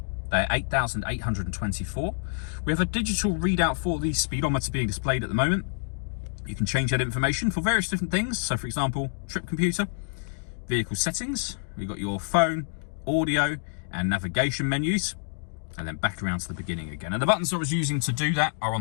They're 8,824. We have a digital readout for the speedometer being displayed at the moment. You can change that information for various different things. So, for example, trip computer, vehicle settings. We've got your phone, audio, and navigation menus. And then back around to the beginning again. And the buttons I was using to do that are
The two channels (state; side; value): silent; right; digital silence